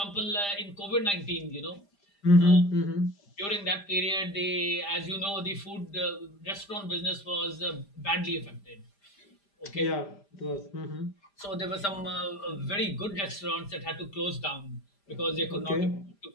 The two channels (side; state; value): right; late; 5.0 ms